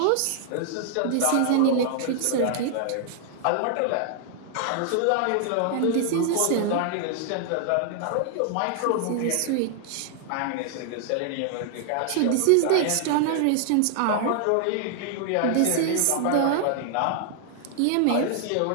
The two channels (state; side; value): different; both; correlation 0.00